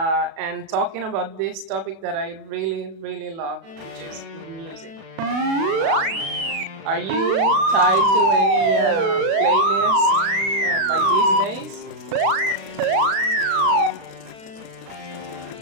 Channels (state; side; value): late; left; 36 ms